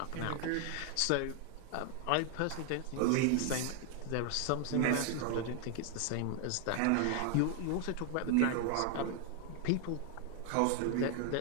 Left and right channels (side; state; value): both; different; correlation 0.00